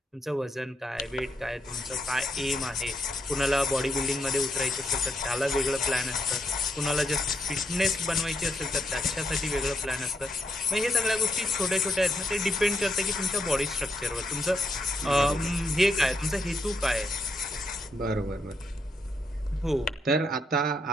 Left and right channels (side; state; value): both; normal; correlation 0.79